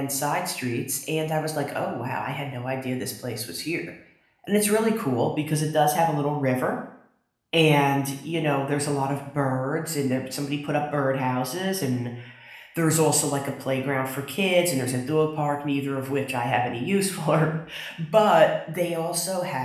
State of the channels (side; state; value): both; identical; correlation 1.00